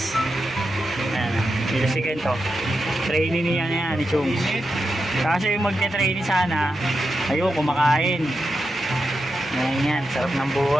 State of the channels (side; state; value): both; normal; correlation 0.88